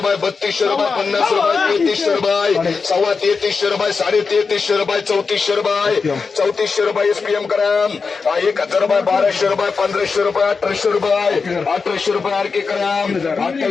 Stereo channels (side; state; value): right; quieter; 4.9 dB